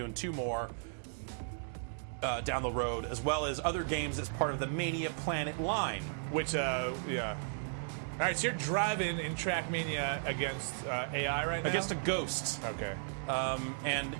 2 more down the road, as well as other games as part of the Mania Planet line. Which, yeah. All right, so you're driving in TrackMania against AI right now? Against a ghost. Okay. And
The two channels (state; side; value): silent; left; digital silence